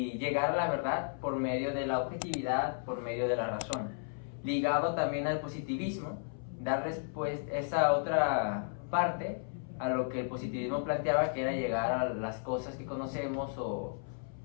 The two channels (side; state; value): right; silent; 55 dB below the other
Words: llegar a la verdad por medio de la objetividad, por medio de la razón. Ligado también al positivismo, dar respuesta esa otra parte a lo que el positivismo planteaba, que era llegar a las cosas que conocemos o